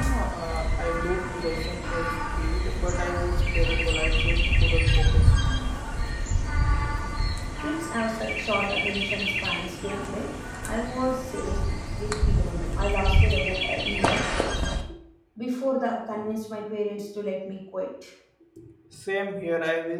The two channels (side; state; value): both; identical; correlation 1.00